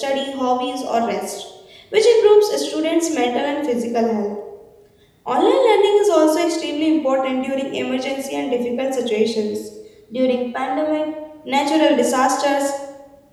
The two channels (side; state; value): both; identical; correlation 1.00